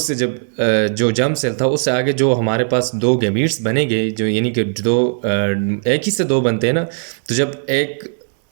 जब जो जर्म सेल था उससे आगे जो हमारे पास दो गैमीट्स बनेंगे, जो यानी कि दो एक ही से दो बनते हैं ना, तो जब एक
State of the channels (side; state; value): left; silent; digital silence